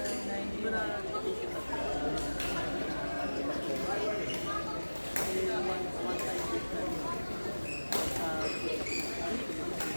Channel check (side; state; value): both; inverted; correlation -1.00